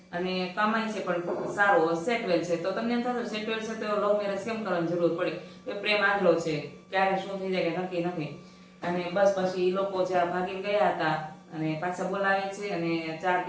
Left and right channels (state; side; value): identical; both; correlation 1.00